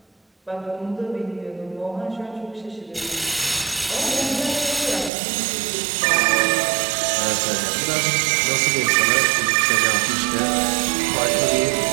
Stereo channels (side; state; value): left; drops out; at 5.1 s